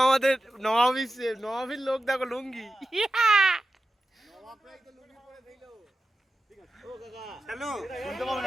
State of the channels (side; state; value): both; normal; correlation 0.93